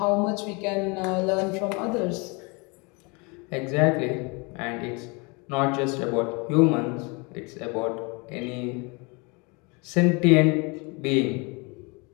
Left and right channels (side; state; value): right; quieter; 29.7 dB